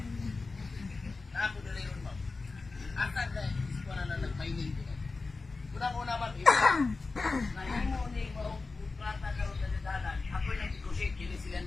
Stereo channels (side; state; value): right; quieter; 3.9 dB